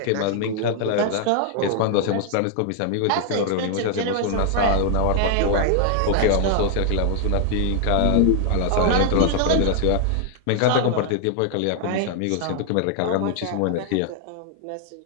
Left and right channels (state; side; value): different; both; correlation 0.00